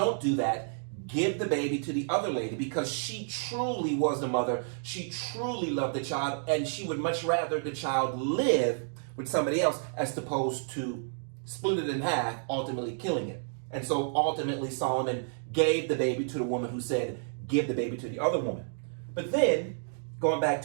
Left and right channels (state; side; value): silent; left; digital silence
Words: do that. Give the baby to the other lady, because she truly was the mother. She truly loved the child, and she would much rather the child live with somebody else as opposed to split it in half, ultimately killing it. And so ultimately Solomon gave the baby to the woman who said, give the baby to the other woman. But then, going back